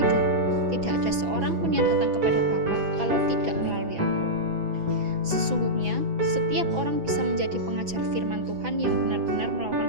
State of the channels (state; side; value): late; left; 6.1 ms